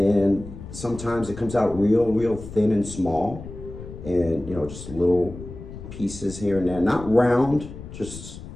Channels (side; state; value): left; noise; rumble, 13 dB below the sound